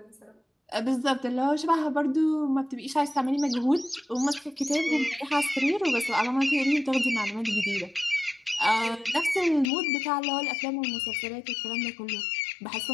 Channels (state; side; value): drops out; right; at 9.7 s